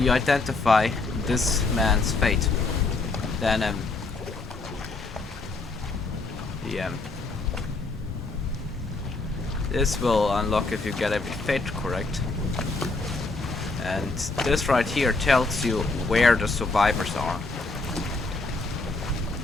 identify this man's fate. then this will unlock if you get every fate correct. And this right here tells you where the survivors are.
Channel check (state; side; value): quieter; right; 3.5 dB